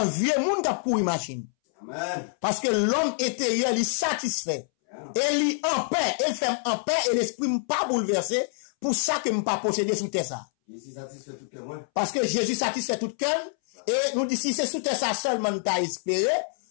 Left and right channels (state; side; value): silent; right; 61 dB below the other